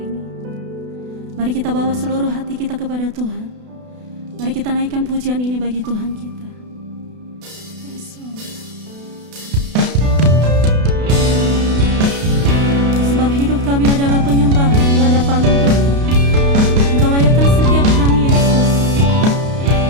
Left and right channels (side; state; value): left; late; 32 ms